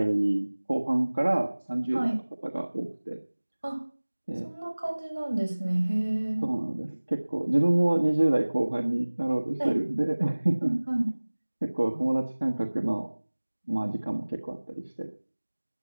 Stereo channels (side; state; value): both; inverted; correlation -1.00